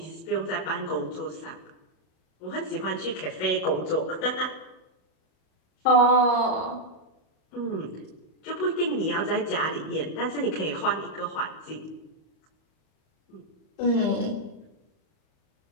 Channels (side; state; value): right; late; 38 ms